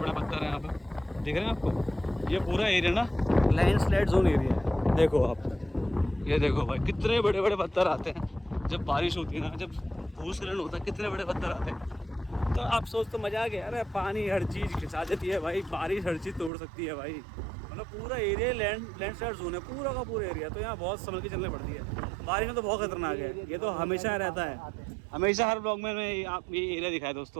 पत्थर हैं यहाँ पर, दिख रहे हैं आपको। ये पूरा एरिया ना लैंडस्लाइड जोन एरिया है। देखो आप, ये देखो भाई कितने बड़े बड़े पत्थर आते हैं जब बारिश होती है ना, जब भूस्खलन होता है, कितने बड़े पत्थर आते हैं। तो आप सोच तो मजा आ गया। अरे पानी हर चीज़ खिंचा देती है भाई, बारिश हर चीज़ तोड़ सकती है भाई। मतलब पूरा एरिया लैंडस्लाइड जोन है, पूरा का पूरा एरिया। तो यहाँ बहुत संभल के चलने पड़ती है। बारिश में तो बहुत खतरनाक है, ये तो हमेशा रहता है। हमेशा हर ब्लॉग में आप ये एरिया दिखाया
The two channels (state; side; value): drops out; left; at 16.5 s